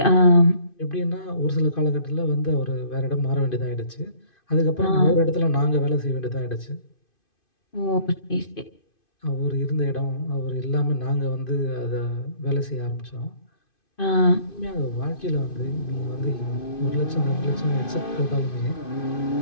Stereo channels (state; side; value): late; right; 2.5 ms